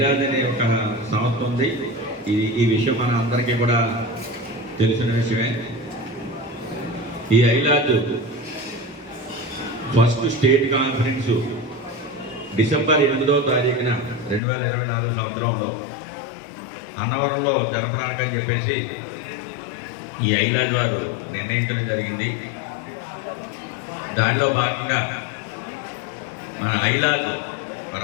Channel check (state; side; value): drops out; right; at 14.4 s